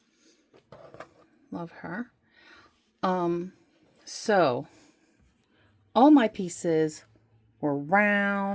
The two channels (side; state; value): both; identical; correlation 1.00